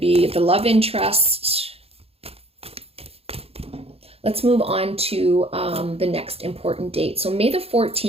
the love interest. Let's move on to the next important date. So May the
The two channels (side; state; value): left; late; 0.29 ms